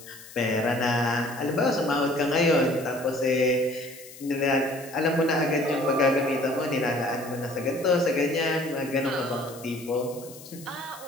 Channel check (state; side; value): noise; left; hiss, 18 dB below the sound